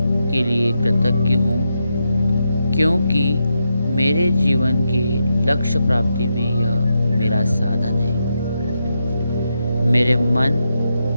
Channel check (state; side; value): inverted; both; correlation -0.85